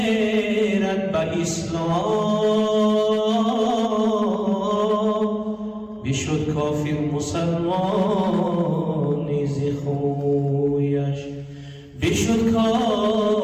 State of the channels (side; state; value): both; identical; correlation 1.00